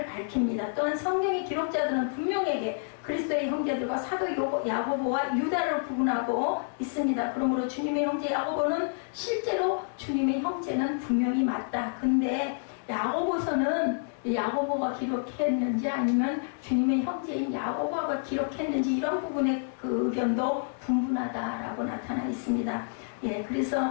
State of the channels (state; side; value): silent; right; 59 dB below the other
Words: 밝힙니다. 또한 성경의 기록자들은 분명하게 그리스도의 형제들과 사도 야고보와 유다를 구분하고 있습니다. 그러므로 주님의 형제 야고보는 실제로 주님의 형제는 분명히 맞다. 근데 야고보서는 야고보가 기록했는지 아니면 주님의 형제인 야고보가 기록했는지 이런 부분의 그 의견도 분분하다라고 나타나 있습니다.